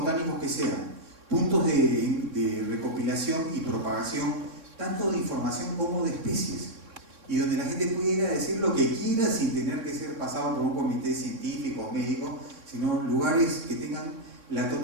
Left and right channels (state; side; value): late; left; 3.6 ms